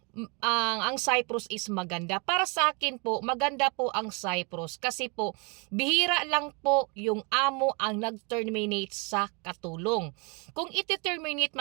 ang Cyprus is maganda. Para sa akin po, maganda po ang Cyprus kasi po bihira lang po yung amo ang nag-terminate sa katulong. Kung iti-terminate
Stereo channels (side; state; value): left; quieter; 32.6 dB